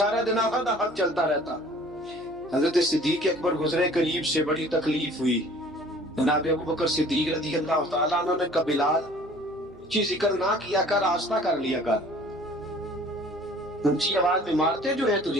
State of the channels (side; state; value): right; noise; hum, 26 dB below the sound